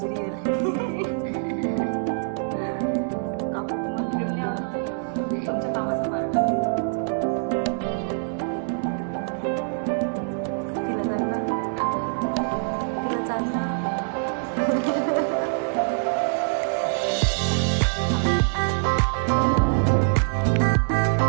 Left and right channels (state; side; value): silent; left; digital silence